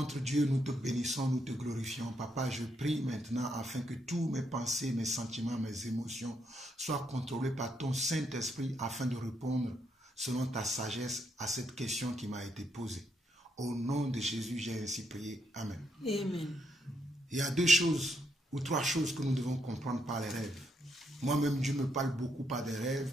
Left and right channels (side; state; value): both; normal; correlation 0.77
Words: Dieu, nous te bénissons, nous te glorifions. Papa, je prie maintenant afin que tous mes pensées, mes sentiments, mes émotions soient contrôlés par ton Saint-Esprit afin de répondre selon ta sagesse à cette question qui m'a été posée. Au nom de Jésus, j'ai ainsi prié. Amen. Amen. Il y a 2 choses ou 3 choses que nous devons comprendre par les rêves. Moi-même, Dieu me parle beaucoup par des rêves,